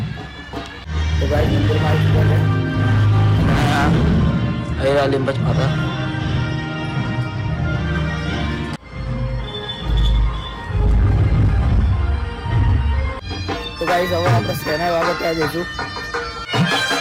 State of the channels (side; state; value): both; identical; correlation 1.00